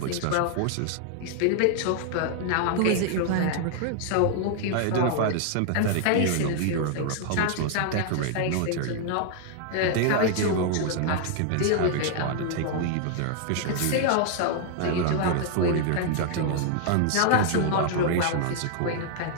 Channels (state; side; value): different; both; correlation 0.00